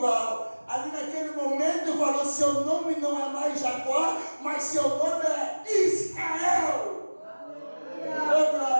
Ali naquele momento falou, seu nome não é mais Jacó, mas seu nome é Israel. Oh,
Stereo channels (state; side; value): inverted; both; correlation -1.00